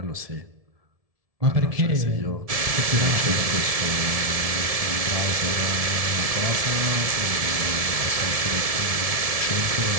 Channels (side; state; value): left; late; 1.7 ms